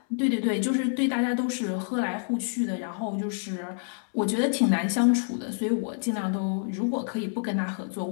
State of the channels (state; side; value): silent; right; 60 dB below the other